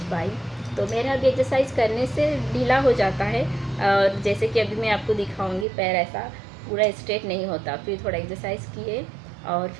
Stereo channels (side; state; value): left; drops out; at 5.7 s